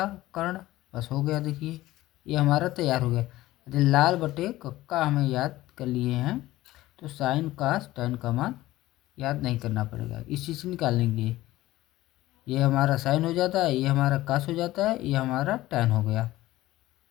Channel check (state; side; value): quieter; right; 16.6 dB